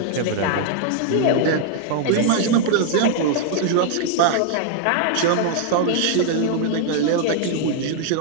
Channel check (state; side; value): different; both; correlation 0.00